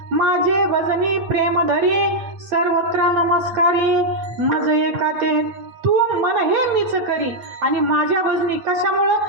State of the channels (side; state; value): left; late; 8.9 ms